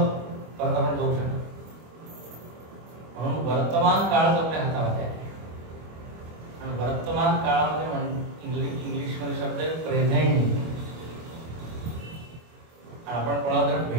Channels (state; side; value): late; left; 25 ms